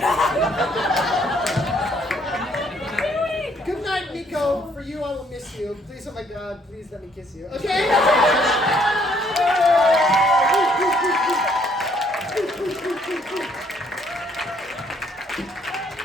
Good night, Miko. For you, I will miss you. Please, oh my God, please let me kiss you. Okay?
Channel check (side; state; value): both; normal; correlation 0.66